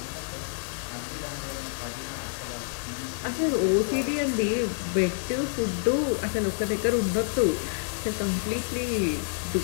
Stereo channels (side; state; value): right; silent; 59 dB below the other